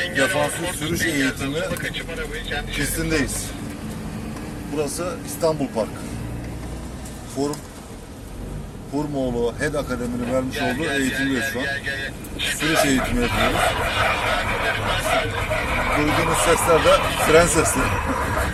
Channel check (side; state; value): both; identical; correlation 1.00